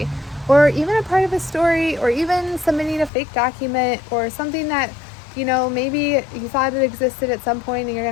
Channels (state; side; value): drops out; right; at 3.1 s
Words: or even a part of a story, or even submitting a fake document, or something that, maybe you thought it existed at some point and you're